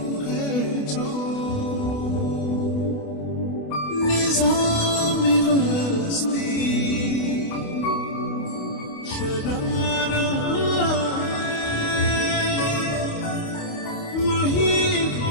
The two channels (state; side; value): late; right; 28 ms